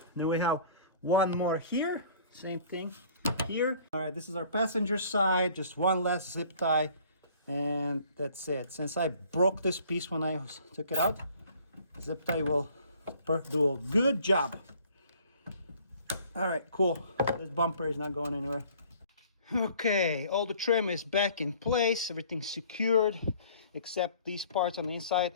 Then we have one more here, same thing here. All right, this is our passenger side, just one last zip tie, and that's it. Since I broke this piece when I took it out, zip tie will do a good job. All right, cool. This bumper is not going anywhere. Okay, all the trim is back in place, everything's secured, except these parts on the inside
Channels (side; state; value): both; inverted; correlation -0.53